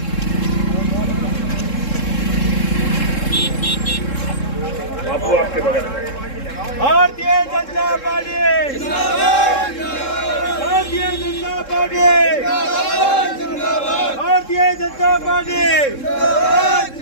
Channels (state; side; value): late; right; 3.7 ms